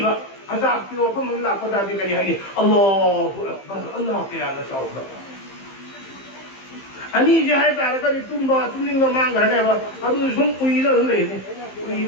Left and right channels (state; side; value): late; right; 15 ms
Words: अजाब की वफम ममला पदा दि करी हाय अल्लाहु अकबर अल्लाह के याद साउबा अनि जे है तारे करी तुमनिंग मांग घने बा अदु सुम उइरा ले नि